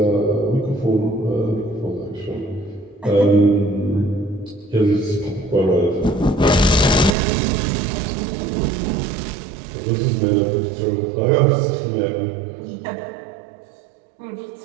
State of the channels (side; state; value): left; drops out; at 7.2 s